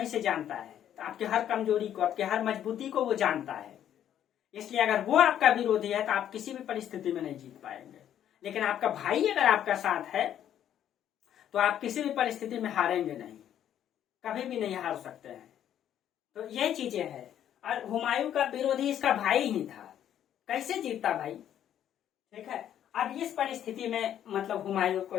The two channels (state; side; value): quieter; right; 10.4 dB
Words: से जानता है, तो आपके हर कमजोरी को, आपके हर मजबूती को वो जानता है। इसलिए अगर वो आपका विरोधी है तो आप किसी भी परिस्थिति में नहीं जीत पाएंगे। लेकिन आपका भाई अगर आपका साथ है तो आप किसी भी परिस्थिति में हारेंगे नहीं, कभी भी नहीं हार सकते हैं। तो ये चीजें हैं। और हुमायूं का विरोधी इसका भाई ही था, कैसे जीतता भाई? ठीक है, अब इस परिस्थिति में मतलब हुमायूं